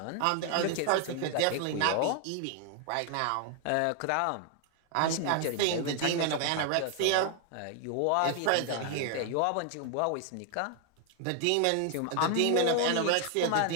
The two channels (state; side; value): different; both; correlation 0.00